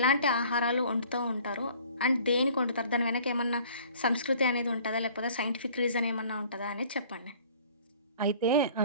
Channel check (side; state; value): both; inverted; correlation -0.51